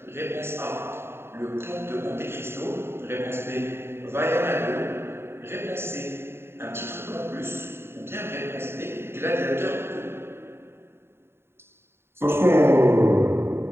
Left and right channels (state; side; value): late; left; 0.11 ms